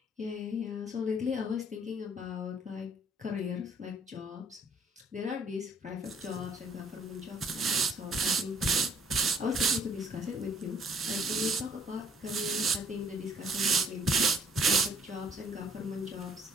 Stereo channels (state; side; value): normal; both; correlation 0.60